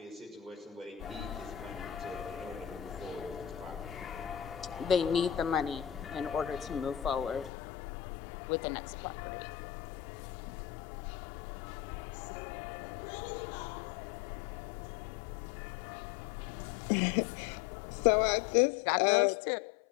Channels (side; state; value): right; drops out; at 7.5 s